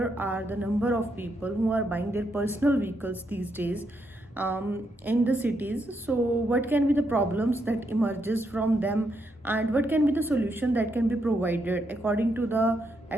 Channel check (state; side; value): normal; both; correlation 0.79